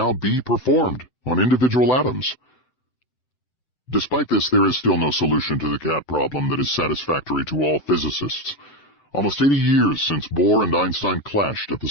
be performed on individual atoms. Despite this, there is still no solution to the cat problem that is satisfactory to all physicists. Almost 80 years since Bohr and Einstein clashed at the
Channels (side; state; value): right; late; 7.9 ms